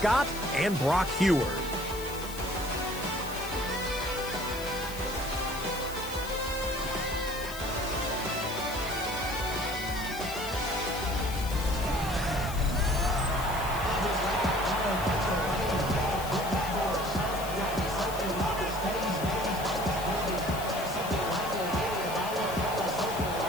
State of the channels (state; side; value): noise; left; hiss, 12 dB below the sound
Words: and Brock Heward.